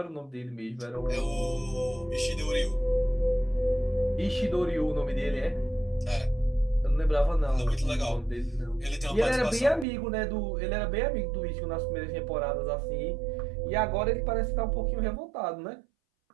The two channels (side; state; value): left; drops out; at 9.9 s